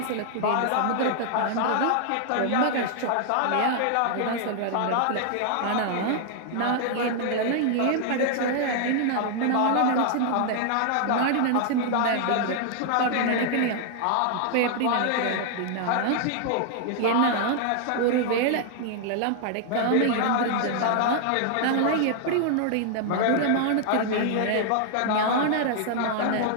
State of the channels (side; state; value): both; different; correlation 0.00